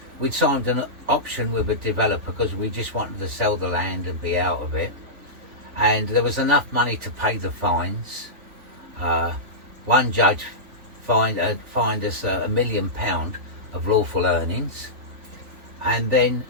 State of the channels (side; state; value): left; late; 3.4 ms